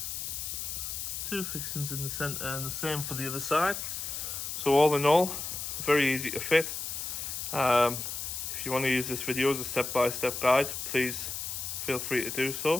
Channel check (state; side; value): noise; left; hiss, 5 dB below the sound